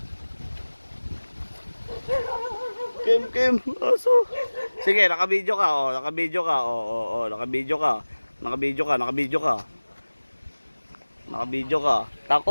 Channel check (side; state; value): both; inverted; correlation -1.00